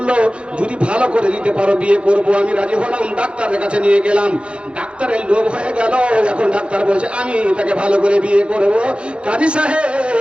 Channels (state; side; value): late; left; 0.058 ms